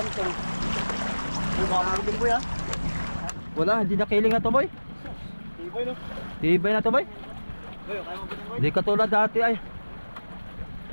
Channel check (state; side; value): inverted; both; correlation -1.00